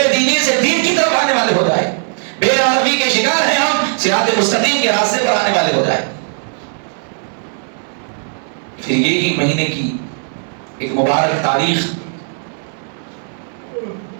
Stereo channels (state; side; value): silent; left; 63 dB below the other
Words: دینی سے دین کی طرف آنے والے ہو جائیں، بے عربی کے شکار ہیں ہم، صراط مستقیم کے راستے پر آنے والے ہو جائیں۔ پھر یہی مہینے کی ایک مبارک تاریخ